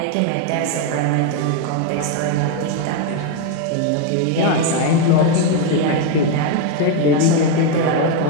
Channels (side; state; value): both; different; correlation 0.02